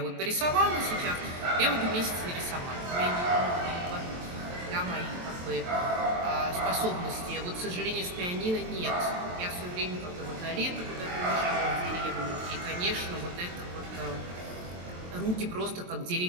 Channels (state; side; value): late; left; 23 ms